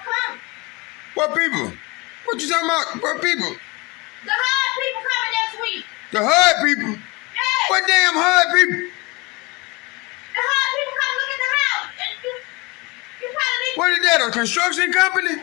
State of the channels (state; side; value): quieter; right; 25.6 dB